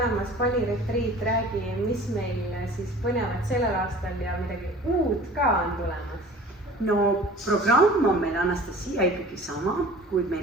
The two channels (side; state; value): both; normal; correlation 0.44